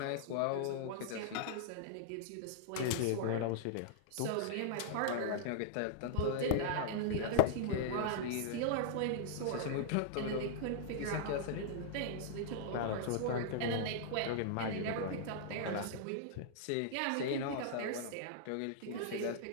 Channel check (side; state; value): both; different; correlation -0.01